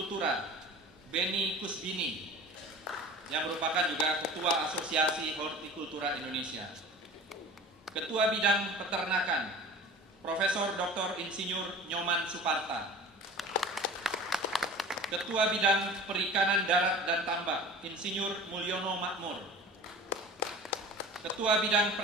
Beni Kusbini, yang merupakan juga Ketua Asosiasi Hortikultura Indonesia. Ketua Bidang Peternakan Profesor Dr. Insinyur Nyoman Suparta. Ketua Bidang Perikanan Darat dan Tambak Insinyur Mulyono Makmur. Ketua Bidang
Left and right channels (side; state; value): both; normal; correlation 0.39